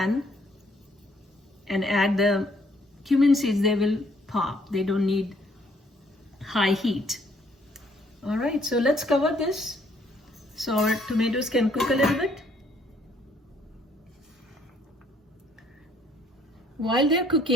and add the cumin seeds, they will pop. They don't need high heat. All right, so let's cover this so our tomatoes can cook a little bit. While they're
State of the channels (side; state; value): both; normal; correlation 0.65